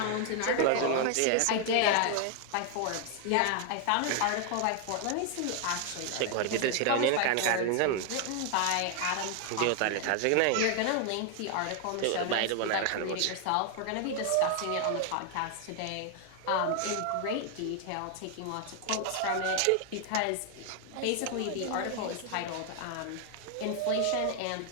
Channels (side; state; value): both; different; correlation 0.00